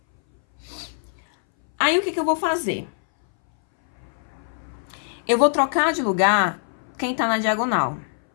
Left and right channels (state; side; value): silent; right; 61 dB below the other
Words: Aí, o que eu vou fazer? Eu vou trocar de lugar quem tá na diagonal,